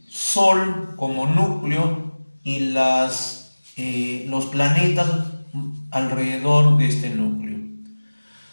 Sol como núcleo y los planetas alrededor de este núcleo.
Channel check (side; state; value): both; inverted; correlation -1.00